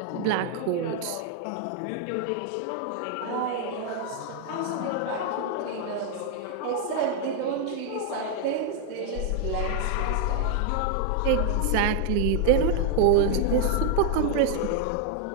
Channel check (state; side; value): different; both; correlation 0.00